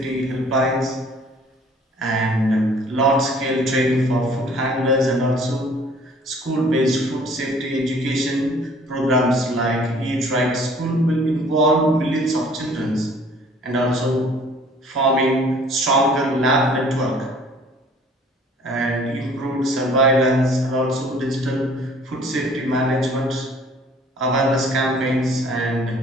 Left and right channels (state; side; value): normal; both; correlation 0.54